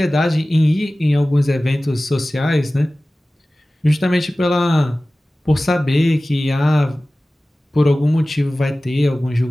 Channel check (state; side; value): normal; both; correlation 0.97